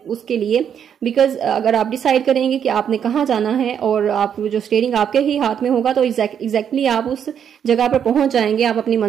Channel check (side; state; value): left; quieter; 8.4 dB